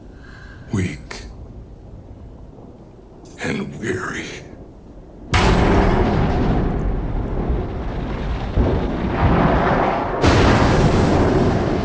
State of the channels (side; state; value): both; identical; correlation 1.00